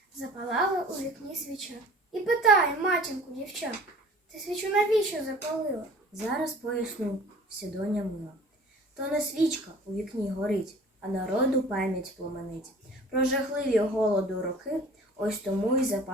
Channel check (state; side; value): normal; both; correlation 0.47